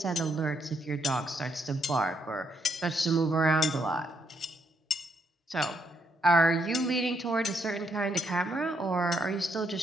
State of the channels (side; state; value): both; normal; correlation 0.75